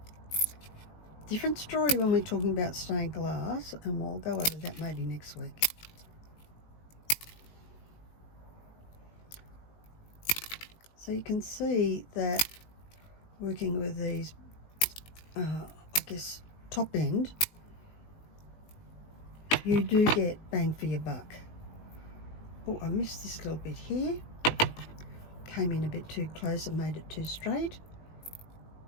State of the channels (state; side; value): late; right; 19 ms